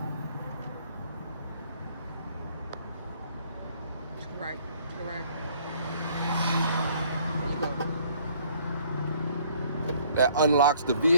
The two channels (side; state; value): both; inverted; correlation -0.60